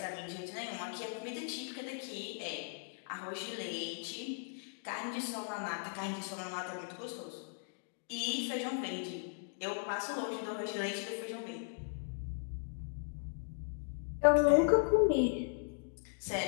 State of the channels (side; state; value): right; silent; digital silence